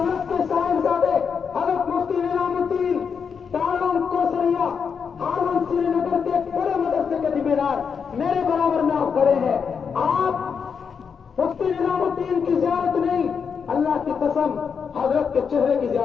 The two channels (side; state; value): right; quieter; 6.4 dB